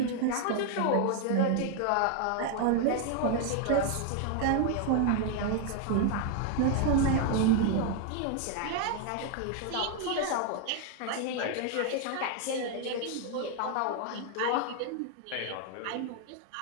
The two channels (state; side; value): different; both; correlation 0.01